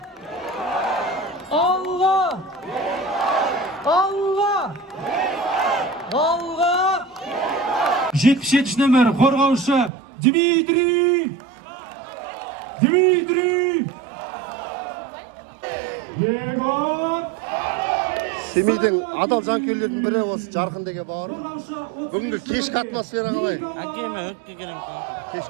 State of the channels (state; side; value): drops out; left; at 9.9 s